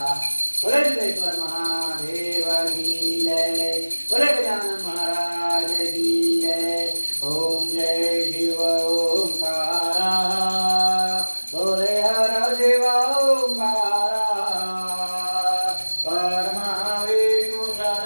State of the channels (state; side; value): inverted; both; correlation -1.00